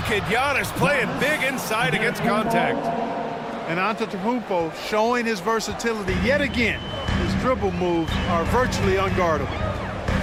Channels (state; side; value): identical; both; correlation 1.00